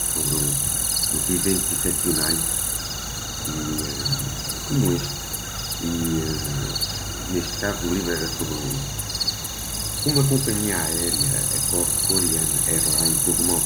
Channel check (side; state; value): both; identical; correlation 1.00